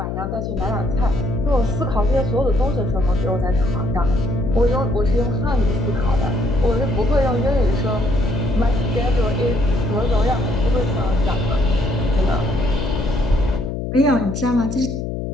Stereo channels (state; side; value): noise; left; hum, 4 dB below the sound